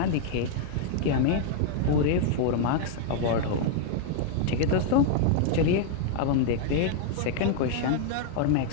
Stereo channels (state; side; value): different; both; correlation 0.00